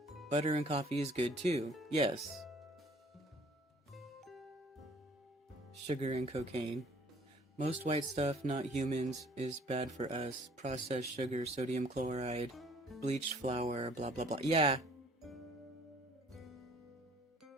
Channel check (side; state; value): both; normal; correlation 0.56